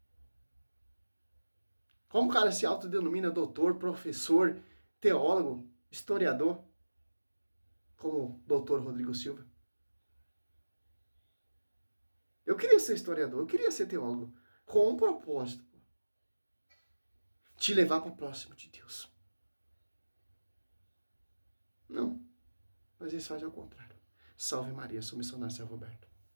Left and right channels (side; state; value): both; inverted; correlation -1.00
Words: Como o cara se autodenomina doutor, professor, teólogo, historiador, como o doutor Rodrigo Silva? Eu queria ser historiador, eu queria ser teólogo, com um propósito, pô. Te levar para próximo de Deus. Não, mas eles fazem ao contrário. Salve Maria, sou missionário São Roberto.